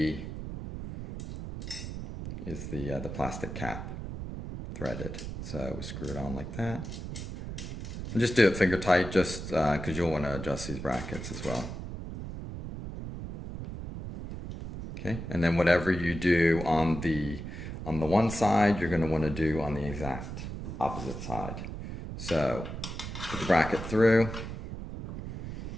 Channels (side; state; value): right; noise; rumble, 8 dB below the sound